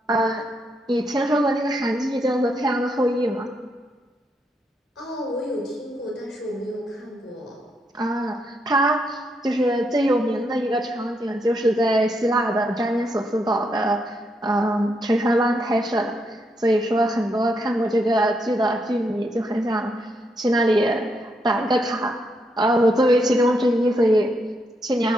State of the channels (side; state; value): both; normal; correlation 0.78